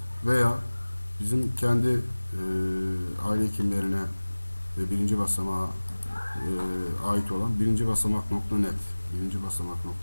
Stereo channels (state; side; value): inverted; both; correlation -1.00